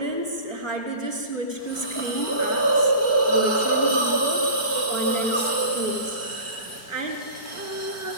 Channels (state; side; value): late; right; 4.5 ms